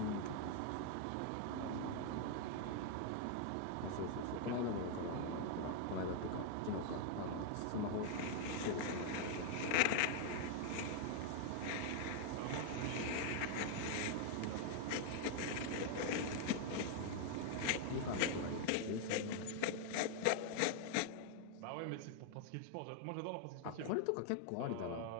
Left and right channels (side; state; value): both; different; correlation 0.00